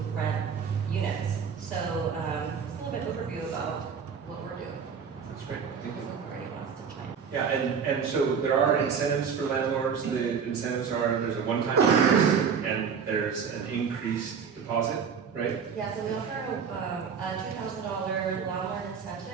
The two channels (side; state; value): left; quieter; 6.6 dB